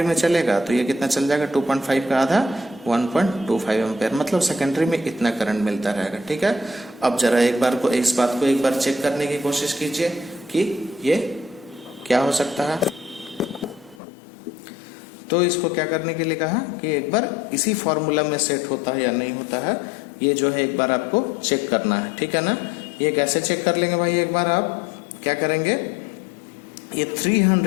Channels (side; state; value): right; drops out; at 14.0 s